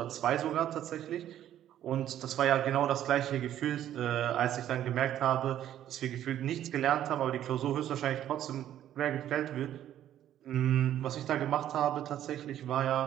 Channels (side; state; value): left; quieter; 11.5 dB